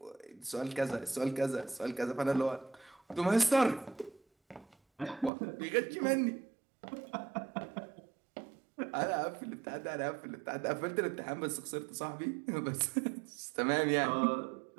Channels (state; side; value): drops out; left; at 5.3 s